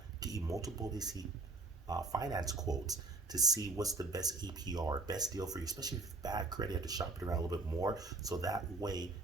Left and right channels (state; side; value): quieter; left; 3.5 dB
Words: get you multiple finance quotes to see what's the best APR, best deal for you, especially if bad credit, you have to shop it around a little bit more. So that way